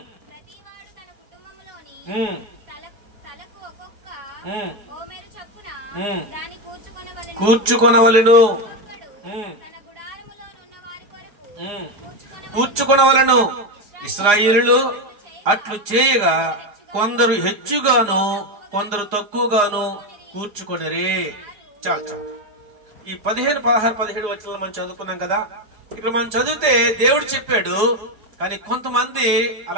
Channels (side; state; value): left; late; 4.9 ms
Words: కూర్చుకొనవలెను. ఇశ్రాయేలులు అట్లు చేయగా కొందరు హెచ్చుగాను కొందరు తక్కువగాను కూర్చుకొనిరే. చాలు. ఈ 15, 16, 17 వచనాలు మనం చదువుకున్నాం కదా. ఇక్కడ మనం చదివితే దేవుడు చెప్పాడు, కానీ కొంతమంది